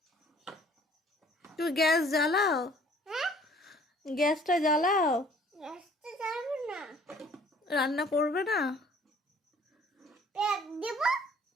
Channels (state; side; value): normal; both; correlation 0.55